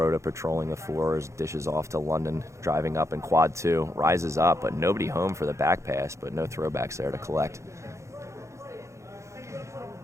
patrolling the floors, dishes off to London, driving up in quad 2, rises up, but nobody home for the back pass, but no Throwbacks there to collect.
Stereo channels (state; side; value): late; left; 0.14 ms